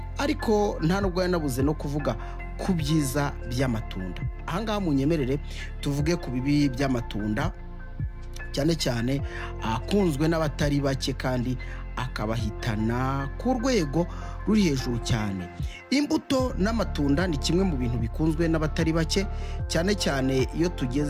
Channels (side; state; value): both; identical; correlation 1.00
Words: ariko nta nubwo yanabuze no kuvuga ku byiza by'amatunda ahangaha munyemerere tuvuge ku bibi by'amatunda cyane cyane akunzwe n'abatari bake kandi akabahitana ku rwego ruri hejuru cyane imbuto n'amatunda ni kimwe mu bintu bikunzwe n'abatari bake cyane cyane iyo